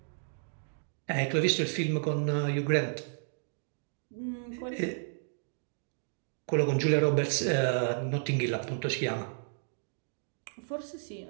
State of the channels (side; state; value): left; silent; digital silence